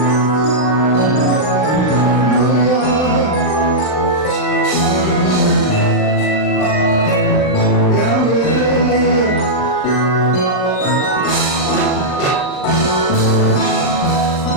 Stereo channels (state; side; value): late; right; 40 ms